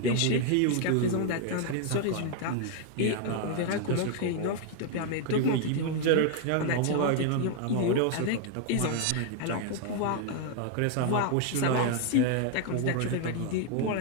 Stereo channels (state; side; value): different; both; correlation 0.00